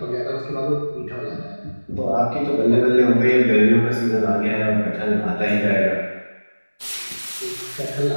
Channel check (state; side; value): inverted; both; correlation -1.00